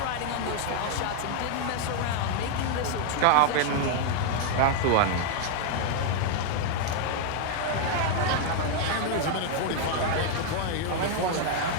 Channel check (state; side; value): different; both; correlation 0.00